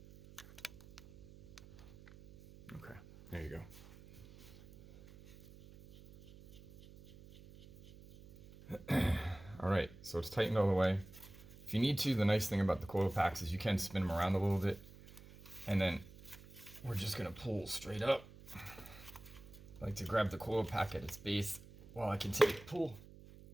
Okay, there you go. All right, so it's tightened all the way. If you need to, the nice thing about the coil packs is you can spin them around a little bit, and then we're just gonna pull straight up. I like to grab the coil pack at its base while I continue to pull,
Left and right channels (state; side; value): noise; right; hum, 19 dB below the sound